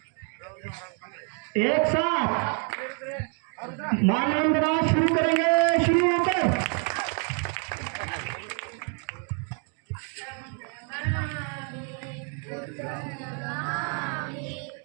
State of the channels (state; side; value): quieter; left; 39.2 dB